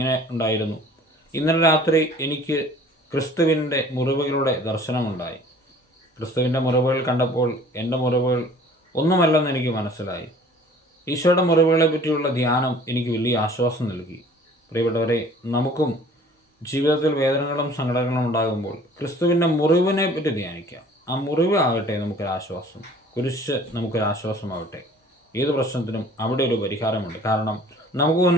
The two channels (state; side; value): normal; both; correlation 0.50